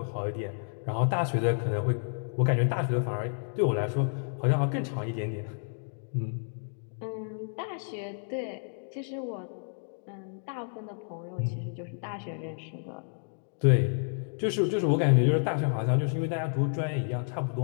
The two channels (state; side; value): silent; right; digital silence